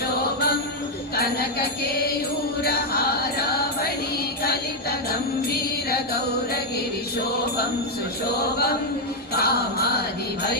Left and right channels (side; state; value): both; normal; correlation 0.02